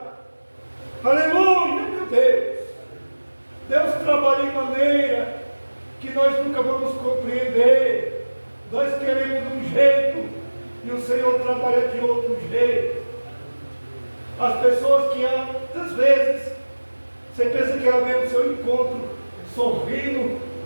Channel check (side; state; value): both; inverted; correlation -1.00